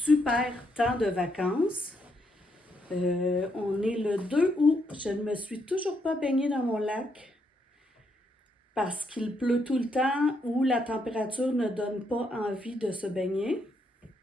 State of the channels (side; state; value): both; normal; correlation 0.76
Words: temps de vacances. On est le 2 août, je ne me suis toujours pas baignée dans mon lac parce qu'il pleut tout le temps ou la température ne donne pas envie de se baigner.